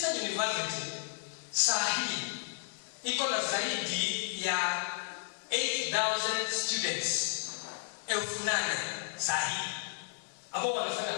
University saa hii iko na zaidi ya 8,000 students. 8,000 saa hii ambao wanafanya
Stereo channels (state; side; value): silent; right; digital silence